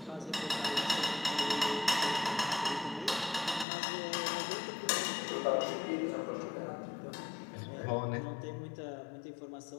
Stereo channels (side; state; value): right; drops out; at 3.7 s